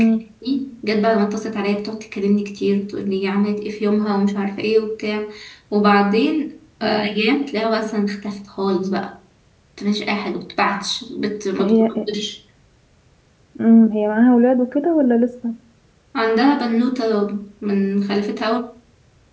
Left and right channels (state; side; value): identical; both; correlation 1.00